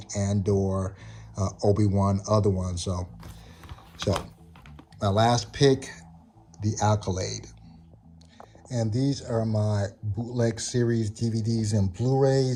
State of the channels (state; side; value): identical; both; correlation 1.00